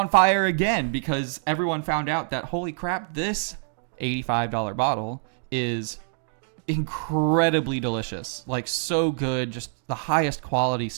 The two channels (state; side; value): silent; left; digital silence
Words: fire again because everyone found out that, holy crap, this $85 bottle is incredibly delicious. Like, so good, just the highest quality